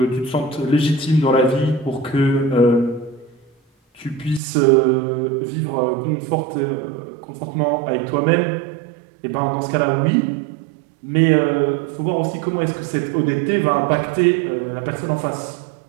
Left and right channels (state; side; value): drops out; left; at 4.4 s